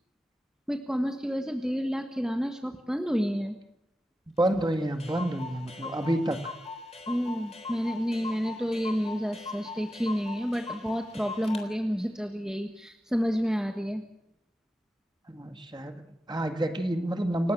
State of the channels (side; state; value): both; normal; correlation 0.91